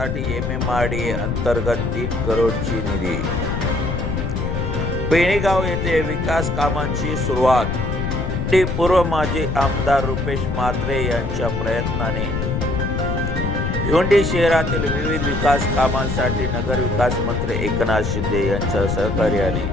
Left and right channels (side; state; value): left; noise; rumble, 2 dB below the sound